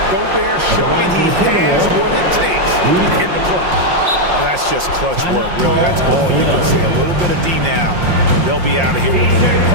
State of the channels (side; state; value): left; late; 5.6 ms